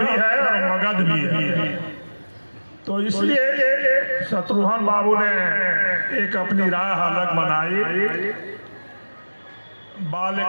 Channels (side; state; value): both; inverted; correlation -1.00